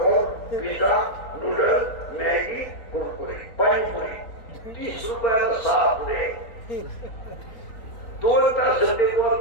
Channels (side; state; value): right; late; 3.9 ms